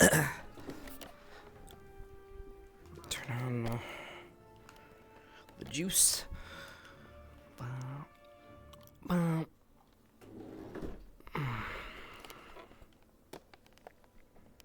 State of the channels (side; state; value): both; identical; correlation 1.00